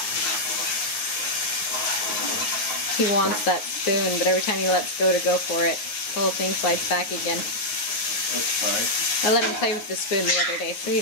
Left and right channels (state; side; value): late; right; 9.5 ms